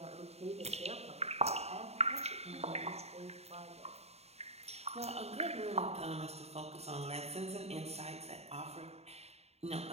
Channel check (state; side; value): late; left; 0.30 ms